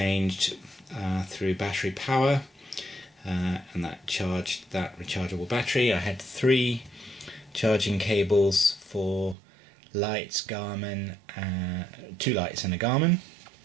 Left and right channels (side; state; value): left; drops out; at 9.3 s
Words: through battery power, and that charged that rechargeable battery. I had 3 charging cables for lights, Garmin, 2 lights and a Garmin.